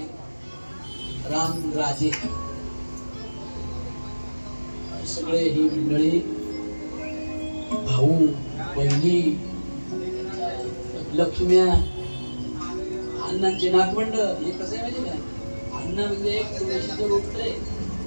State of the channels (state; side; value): inverted; both; correlation -1.00